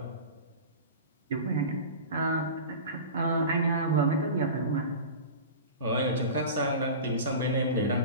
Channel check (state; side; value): inverted; both; correlation -0.31